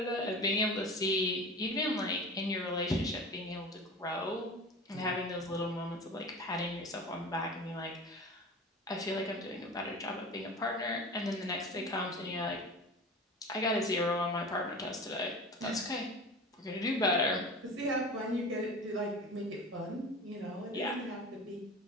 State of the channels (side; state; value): both; normal; correlation 0.34